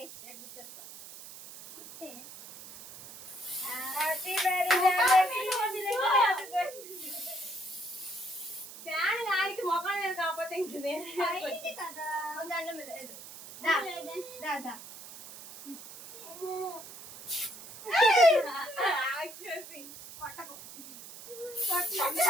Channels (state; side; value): noise; right; hiss, 14 dB below the sound